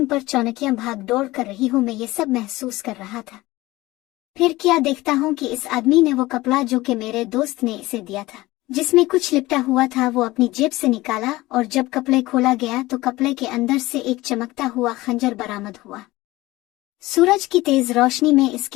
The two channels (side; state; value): right; quieter; 19.0 dB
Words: पर चौनकियां भाग दौड़ कर रही हूं। मैं ये सब महसूस कर रहा था। फिर क्या देखता हूं कि इस आदमी ने वो कपड़ा जो कि मेरे दोस्त ने इसे दिया था, जिसमें कुछ लिपटा हुआ था, वो अपनी जेब से निकाला और जब कपड़े खोला गया तो कपड़े के अंदर से एक चमकता हुआ खंजर बरामद हुआ। सूरज की तेज रोशनी में